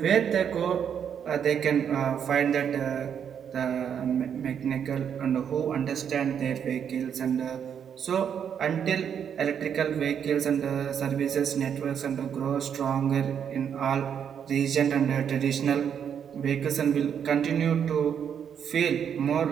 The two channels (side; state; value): left; quieter; 8.1 dB